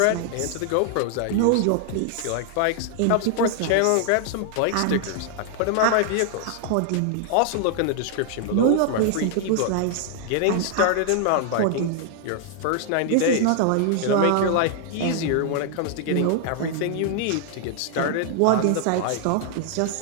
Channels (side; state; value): both; different; correlation 0.00